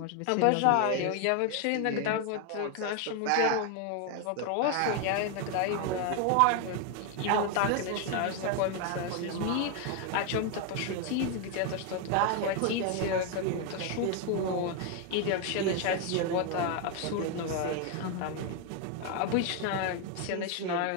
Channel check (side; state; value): both; different; correlation 0.01